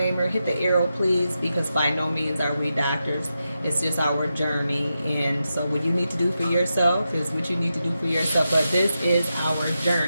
Hit the arrow, please, because by no means are we doctors. It's just our journey. And so what you need to do for yourself is what you need to do for yourself. But this is our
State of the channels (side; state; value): both; inverted; correlation -0.88